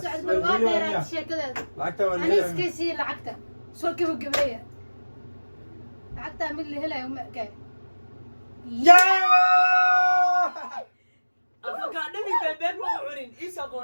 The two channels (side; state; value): both; inverted; correlation -1.00